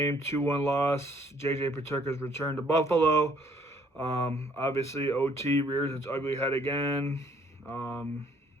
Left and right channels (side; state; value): both; normal; correlation 0.63